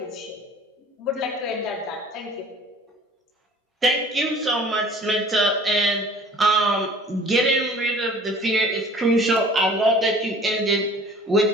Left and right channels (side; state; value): both; normal; correlation 0.48